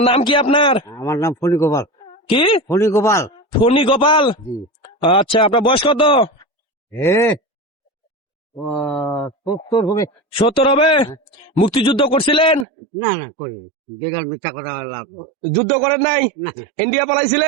নাম কি আপনার? আমার নাম ফণি গোপাল। কি? ফণি গোপাল। ফণি গোপাল। জি। আচ্ছা আপনার বয়স কত? হে ও 70 হবে। 70 হবে? মুক্তিযুদ্ধ করছিলেন? না না করি বেকার মিথ্যা কথা লাভ। যুদ্ধ করেন নাই? না ইন্ডিয়া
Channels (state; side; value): drops out; left; at 12.7 s